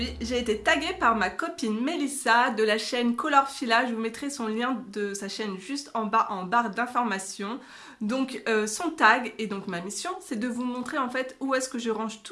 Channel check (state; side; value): identical; both; correlation 1.00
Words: j'ai été taguée par ma copine Mélissa de la chaîne Colorfila. Je vous mettrai son lien de sa chaîne juste en bas en barre d'informations. Donc son tag et donc ma mission, c'est de vous montrer en fait où est-ce que je range